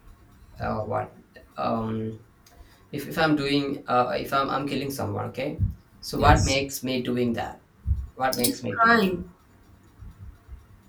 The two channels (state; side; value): identical; both; correlation 1.00